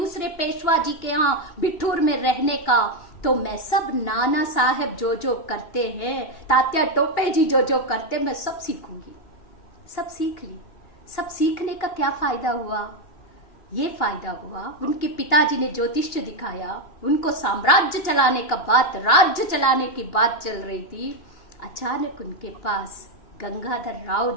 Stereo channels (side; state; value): right; late; 2.8 ms